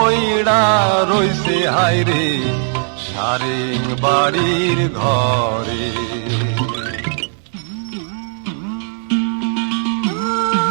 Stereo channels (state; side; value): silent; left; 58 dB below the other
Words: রইছে হায়রে সারে বাড়ির ঘরে।